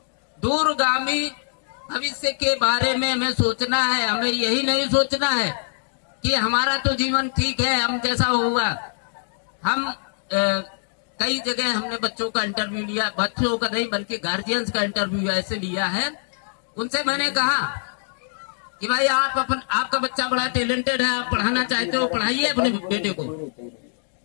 दूरगामी भविष्य के बारे में हमें सोचना है। हमें यही नहीं सोचना है कि हमारा तो जीवन ठीक है, हम जैसा होगा। हम कई जगह हमने बच्चों का इंटरव्यू लिया, बच्चों का नहीं बल्कि गार्जियंस का इंटरव्यू ऐसे लिया है। उनसे मैंने कहा कि भाई आपका बच्चा बड़ा टैलेंटेड है, आप पढ़ाना चाहते हो, पढ़ाइए अपने बेटे को।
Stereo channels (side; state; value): right; silent; digital silence